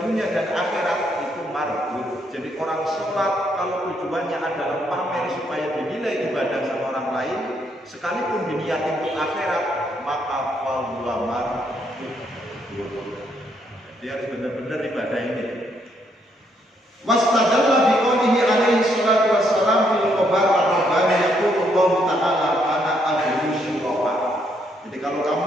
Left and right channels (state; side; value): normal; both; correlation 0.73